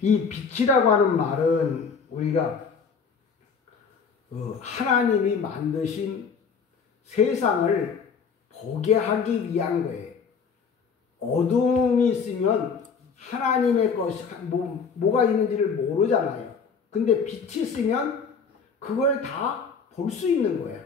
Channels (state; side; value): quieter; right; 5.7 dB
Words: 이 빛이라고 하는 말은 우리가 하나님이 만드신 세상을 보게 하기 위한 거예요. 어둠이 있으면 하나님의 것이 뭐가 있는지를 모르잖아요. 근데 빛이 있으면 그걸 다 볼 수 있는 거예요.